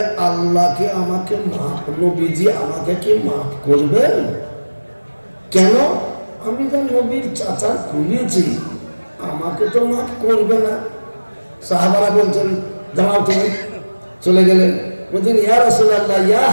আল্লাহকে আমাকে মাফ, নবীজি আমাকে কি মাফ করবেন? কেন? আমি তো নবীর চাচা খুলেছি, আমাকে তো মাফ করবে না। সাহাবারা বলছেন দাঁড়াও, তুমি চলে গেলেন। বলছেন ইয়া রাসূলুল্লাহ, ইয়া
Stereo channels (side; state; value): both; inverted; correlation -1.00